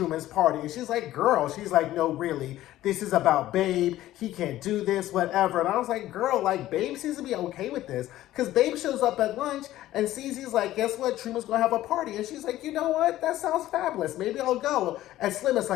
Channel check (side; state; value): right; quieter; 14.6 dB